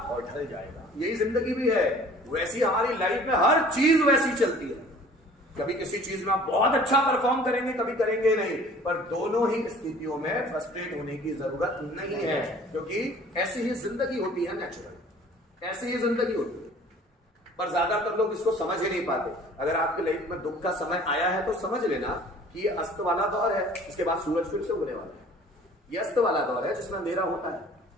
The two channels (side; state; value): both; normal; correlation 0.50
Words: और ढल जाएगा। यही जिंदगी भी है। वैसी हमारी लाइफ में हर चीज वैसी चलती है। कभी किसी चीज में आप बहुत अच्छा परफॉर्म करेंगे, कभी करेंगे नहीं, पर दोनों ही स्थितियों में फ्रस्ट्रेट होने की जरूरत नहीं है, क्योंकि ऐसी ही जिंदगी होती है, नेचुरल ऐसी ही जिंदगी होती है। पर ज्यादातर लोग इसको समझ ही नहीं पाते। अगर आपके लाइफ में दुख का समय आया है तो समझ लेना कि ये अस्त वाला दौर है, इसके बाद सूरज फिर से उगने वाला है। ये अस्त वाला दौर है जिसमें अंधेरा होता है,